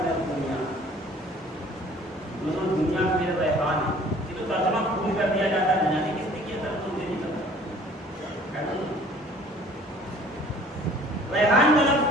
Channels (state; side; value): normal; both; correlation 0.52